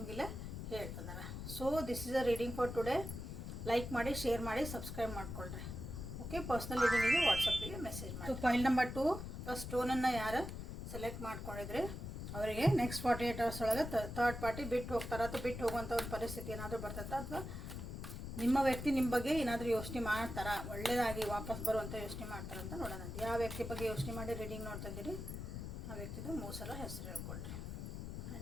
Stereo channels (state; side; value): noise; left; rumble, 7 dB below the sound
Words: ಹೇಳ್ತಿದ್ದಾರೆ. So this is a reading for today. Like ಮಾಡಿ, ಶೇರ್ ಮಾಡಿ, ಸಬ್ಸ್ಕ್ರೈಬ್ ಮಾಡ್ಕೊಳ್ರಿ. ಓಕೆ, ಪರ್ಸ್ನಲ್ ರೀಡಿಂಗಿಗೆ ವಾಟ್ಸಪ್ಪಿಗೆ ಮೆಸೇಜ್ ಮಾಡಿ. ಫೈಲ್ ನಂಬರ್ 2 ಸ್ಟೋನನ್ನು ಯಾರು ಸೆಲೆಕ್ಟ್ ಮಾಡ್ಕೊಂಡಿದ್ರೆ ಅವರಿಗೆ ನೆಕ್ಸ್ಟ್ 48 hours ಒಳಗೆ ಥರ್ಡ್ ಪಾರ್ಟಿ ಬಿಟ್ಟು ಹೋಗ್ತಾರೆ, ಅಥವಾ ಬಿಟ್ಟು ಹೋಗುವಂಥ ಒಂದು ಪರಿಸ್ಥಿತಿ ಏನಾದರೂ ಬರ್ತೈತೆ, ಅಥವಾ ನಿಮ್ಮ ವ್ಯಕ್ತಿ ನಿಮ್ಮ ಬಗ್ಗೆ ಏನಾದರೂ ಯೋಚನೆ ಮಾಡ್ತಾರಾ, ಒಳ್ಳೆಯದಾಗಿ ವಾಪಸ್ ಬರುವಂಥ ಯೋಚನೆ ಮಾಡ್ತಾರೆ ಅಂತ ನೋಡೋಣ. ಯಾವ ವ್ಯಕ್ತಿ ಬಗ್ಗೆ ಯೋಚನೆ ಮಾಡಿ ರೀಡಿಂಗ್ ನೋಡ್ತಾ ಇದ್ದೀರಿ ಆ ವ್ಯಕ್ತಿದು 3 ಸಲ ಹೆಸರು ಹೇಳ್ಕೊಳ್ರಿ.